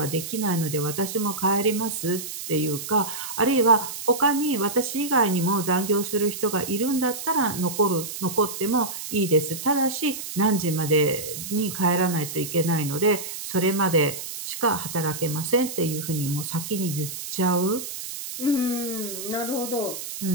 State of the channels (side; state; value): right; noise; hiss, 8 dB below the sound